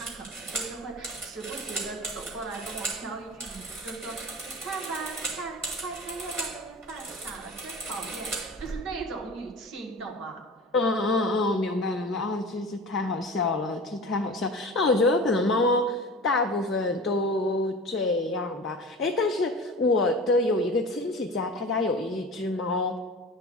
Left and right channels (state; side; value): normal; both; correlation 0.35